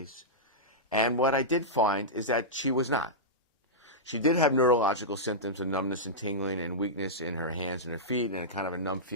And what I did find is that she was not. She did have neurological symptoms of numbness and tingling and weakness in her hands and her feet and kind of a numb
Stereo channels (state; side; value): normal; both; correlation -0.12